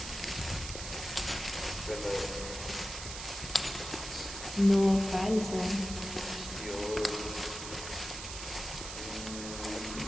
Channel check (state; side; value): noise; right; hiss, 8 dB below the sound